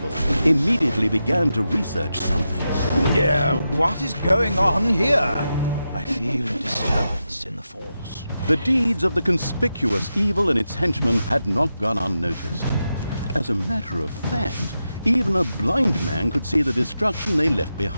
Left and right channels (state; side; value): inverted; both; correlation -0.89